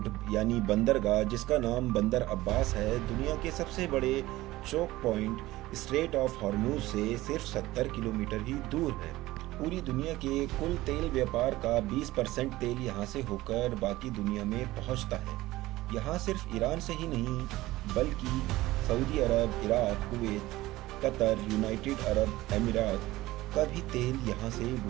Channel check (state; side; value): quieter; left; 17.6 dB